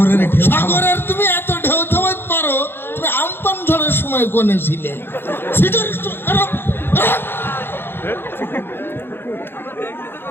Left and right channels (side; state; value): right; late; 0.10 ms